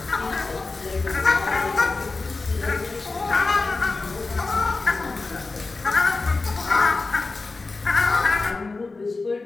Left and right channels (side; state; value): right; quieter; 3.7 dB